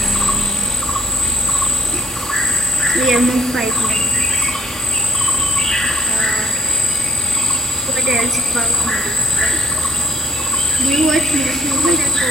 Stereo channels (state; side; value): normal; both; correlation 0.65